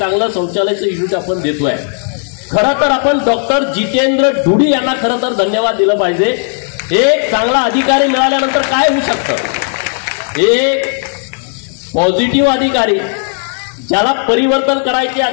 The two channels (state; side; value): silent; right; 56 dB below the other